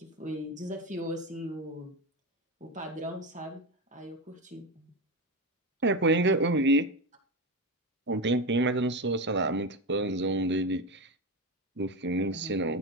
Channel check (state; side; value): normal; both; correlation 0.18